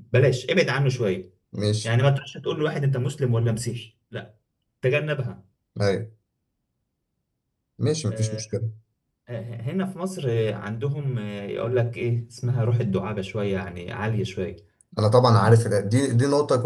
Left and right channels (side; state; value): both; identical; correlation 1.00